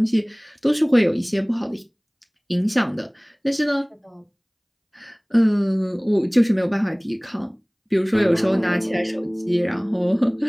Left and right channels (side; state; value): both; identical; correlation 1.00